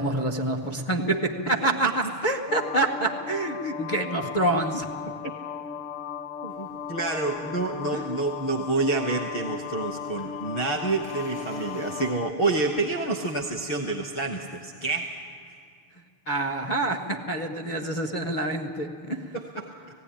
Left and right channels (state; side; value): late; right; 6.7 ms